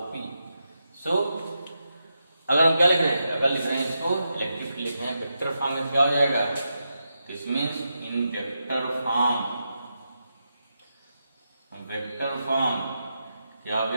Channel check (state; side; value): inverted; both; correlation -0.86